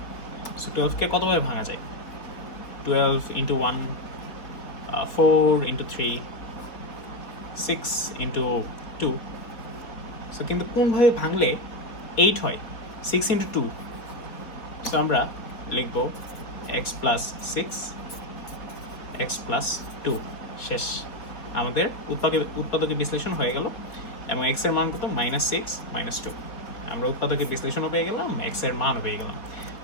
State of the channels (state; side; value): late; right; 3.7 ms